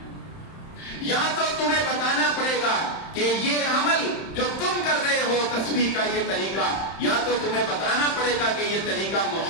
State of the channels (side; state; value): right; late; 31 ms